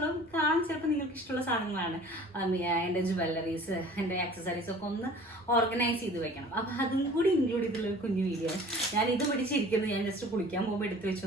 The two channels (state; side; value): normal; both; correlation 0.47